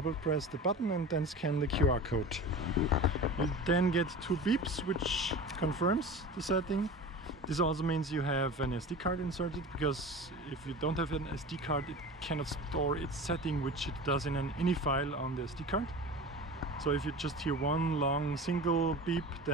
press the button and then scan the QR code. You then get 2 beeps which confirms the setting. This also means you have an SD card inserted, because if you don't have an SD card, it cannot store its setting, which it does in an INI file on the SD card. So if you just hear one long single beep,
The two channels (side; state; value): both; normal; correlation 0.34